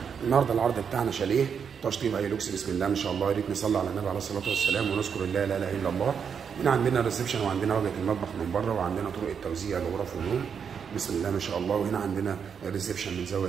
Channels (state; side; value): quieter; left; 7.0 dB